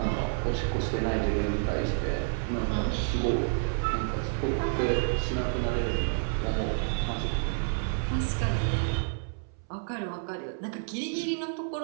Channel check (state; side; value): silent; left; 58 dB below the other